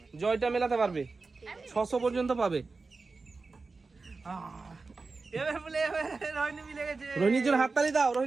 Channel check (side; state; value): left; quieter; 4.0 dB